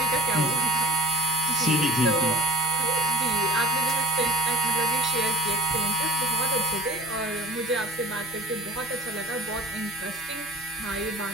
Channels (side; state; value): both; normal; correlation 0.43